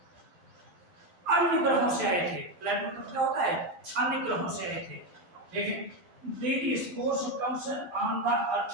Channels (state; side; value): late; left; 12 ms